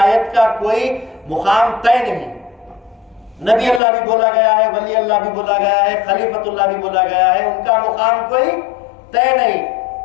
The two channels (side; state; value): right; drops out; at 3.8 s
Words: کا کوئی مقام طے نہیں، نبی اللہ بھی بولا گیا ہے، ولی اللہ بھی بولا گیا ہے، خلیفۃ اللہ بھی بولا گیا ہے، ان کا مقام کوئی طے نہیں۔